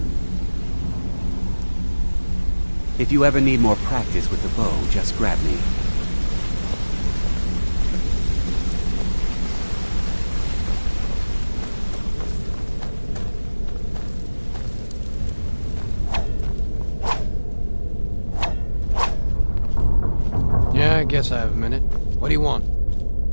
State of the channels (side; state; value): both; inverted; correlation -1.00